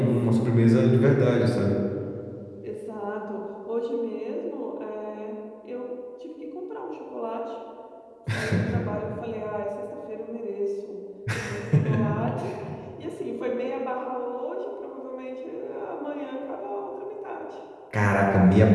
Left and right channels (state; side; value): identical; both; correlation 1.00